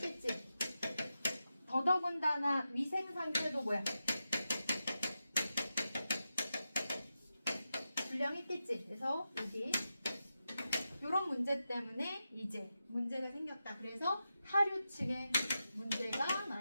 더더군다나 위생 상태도 뭐야? 불량했겠지. 그래서 여기 이런 문제 때문에 이제 문제가 생겼다. 그래서 하류층에 문제가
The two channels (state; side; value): inverted; both; correlation -0.90